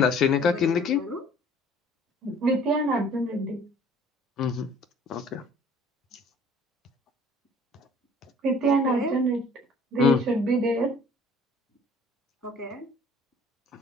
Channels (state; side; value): normal; both; correlation 0.53